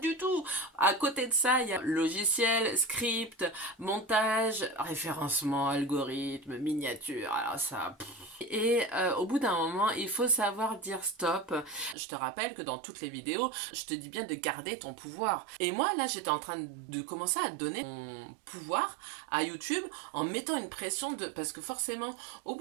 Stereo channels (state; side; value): drops out; left; at 12.0 s